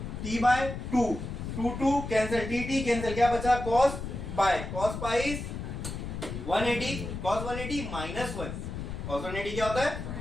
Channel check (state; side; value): noise; left; rumble, 6 dB below the sound